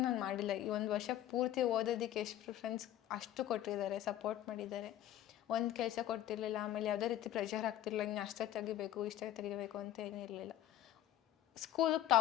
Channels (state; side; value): quieter; right; 12.5 dB